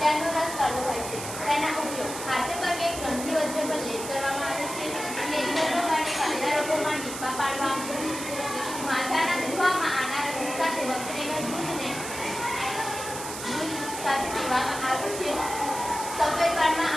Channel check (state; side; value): noise; right; hiss, 8 dB below the sound